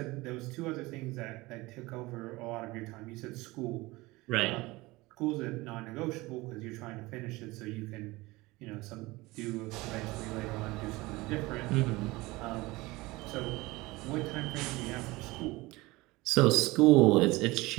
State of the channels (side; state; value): left; quieter; 21.2 dB